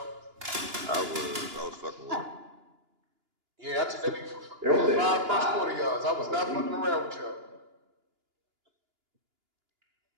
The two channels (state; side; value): late; left; 2.9 ms